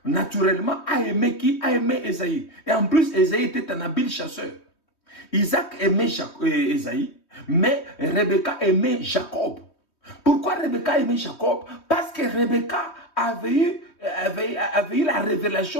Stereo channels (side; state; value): right; late; 3.2 ms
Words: naturellement, a aimé qui? A aimé Ésaïe. Et en plus, Ésaïe était un habile chasseur. Isaac aimait Ésaïe, mais Rebecca aimait Jacob. Pourquoi Rebecca aimait Jacob? Parce que Rebecca avait eu la